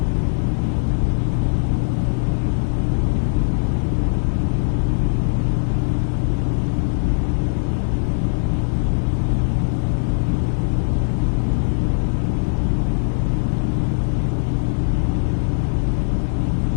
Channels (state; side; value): silent; right; digital silence